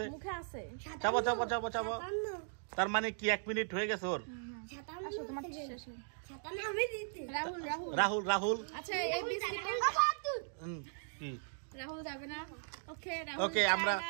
চাবো। তার মানে কি 1 মিনিট হয়ে গেছে ওর? রাহুল রাহুল আচ্ছা, এই বিস্কিট কি রাহুল যাবে না। ওকে ওকে, আমরা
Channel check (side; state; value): left; silent; digital silence